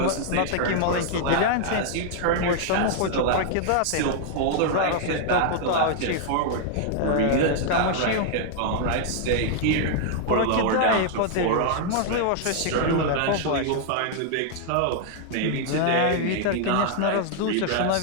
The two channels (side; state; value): both; different; correlation 0.00